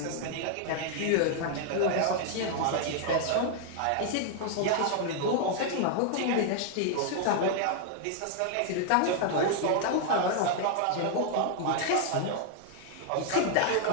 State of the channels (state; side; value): different; both; correlation 0.00